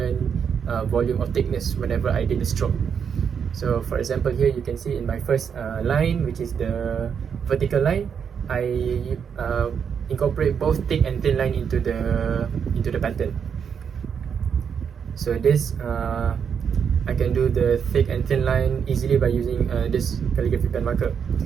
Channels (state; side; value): quieter; left; 7.2 dB